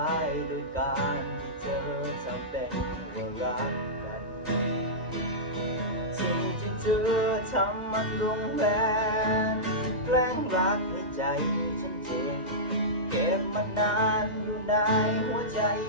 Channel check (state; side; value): normal; both; correlation -0.14